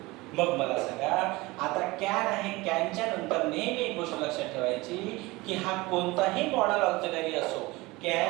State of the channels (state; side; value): quieter; left; 22.0 dB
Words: मग मला सांगा, आता कॅन आहे, कॅनच्या नंतर नेहमी एक गोष्ट लक्षात ठेवायची की हा कोणताही मॉडल ऑक्झिलरी असो,